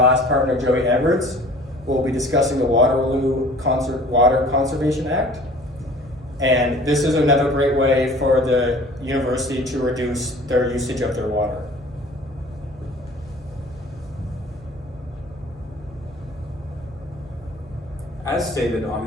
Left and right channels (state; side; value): normal; both; correlation 0.47